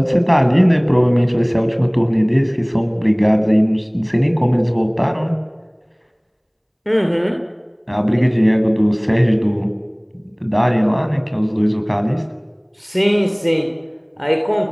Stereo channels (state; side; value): identical; both; correlation 1.00